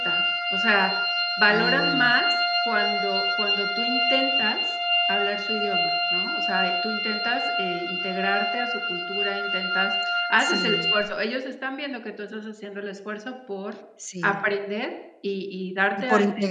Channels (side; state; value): both; identical; correlation 1.00